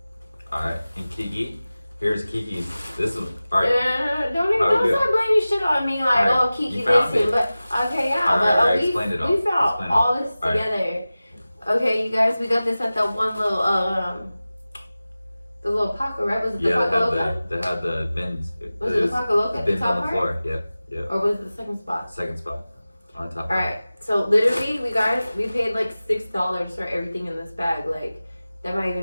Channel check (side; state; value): both; inverted; correlation -0.96